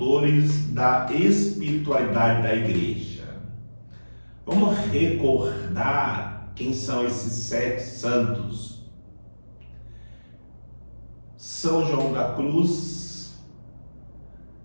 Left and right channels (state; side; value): inverted; both; correlation -1.00